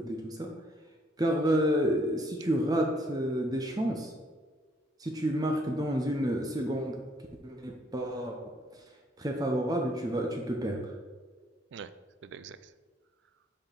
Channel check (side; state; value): both; normal; correlation 0.67